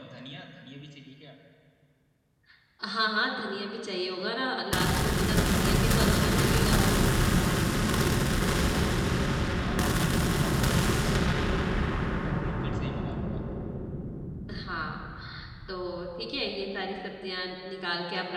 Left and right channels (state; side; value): identical; both; correlation 1.00